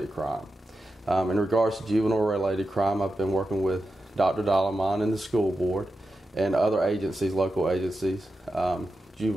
crime. In regards to juvenile-related crime, I've been working with Dr. Dalaman and the school board and other agencies, local agencies,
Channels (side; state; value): both; normal; correlation 0.90